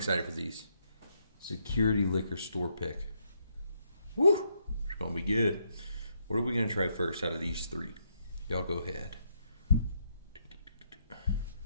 for these. Security Liquor Store pick. Woo! It's going to be good. What are we going to try first out of these three? Y'all go ahead.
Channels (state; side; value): inverted; both; correlation -0.76